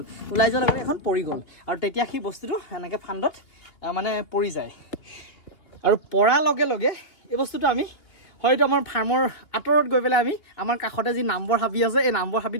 ওলাই যোৱাৰ লগে এখন পৰি গ'ল আৰু তেতিয়া সেই বস্তুটো এনেকৈ ফান্দত মানে পৰি যায় আৰু পৰাৰ লগে লগে এই বস্তুটো আমি হয়তো আমাৰ ফাৰ্মৰ আঁতৰত গৈ পেলাই আমি আমাৰ কাষতে যি নাম্বৰ হাবি আছে এই নাম্বৰ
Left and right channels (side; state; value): right; late; 2.8 ms